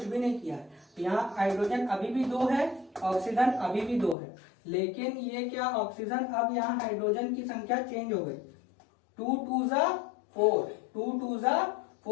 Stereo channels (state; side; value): drops out; right; at 4.2 s